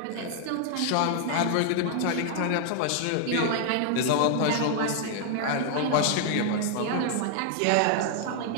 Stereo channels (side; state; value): both; different; correlation 0.00